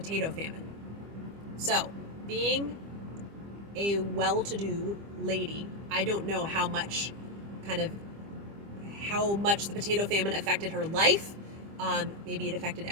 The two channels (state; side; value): late; left; 25 ms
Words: famine. So, being a well-to-do lady, I don't know how much the potato famine affected her life. Maybe it affected